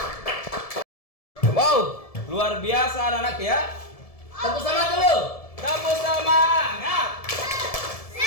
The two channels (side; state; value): right; late; 1.7 ms